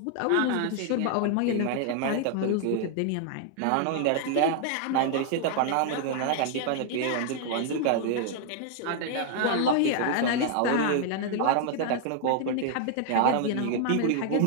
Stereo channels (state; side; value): different; both; correlation 0.00